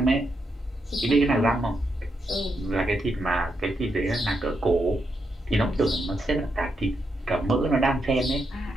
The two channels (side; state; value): both; normal; correlation 0.82